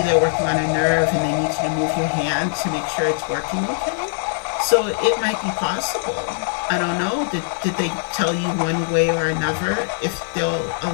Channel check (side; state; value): right; silent; 61 dB below the other